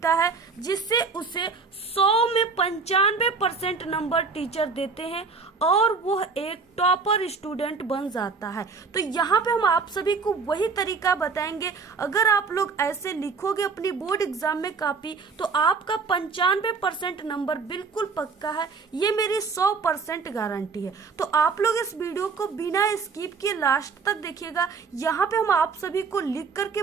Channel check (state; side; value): quieter; left; 4.9 dB